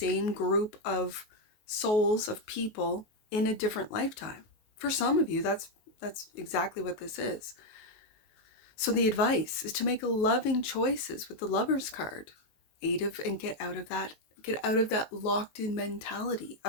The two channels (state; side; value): late; right; 19 ms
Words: group of souls, of people in a different lifetime. For some of you, that's exactly what this is. So the advice is to make loving choices with the Lover's card. And get out of that locked in mentality